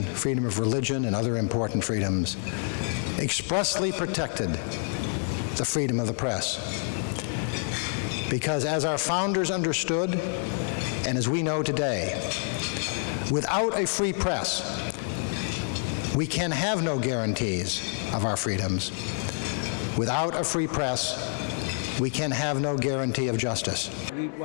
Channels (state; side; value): silent; right; 60 dB below the other